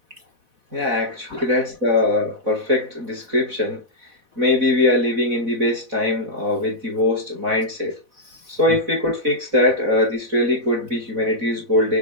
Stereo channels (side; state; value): left; late; 4.1 ms